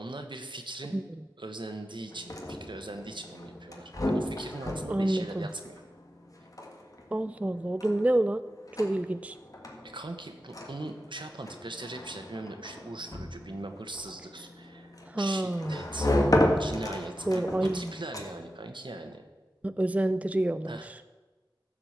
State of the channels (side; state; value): both; normal; correlation 0.90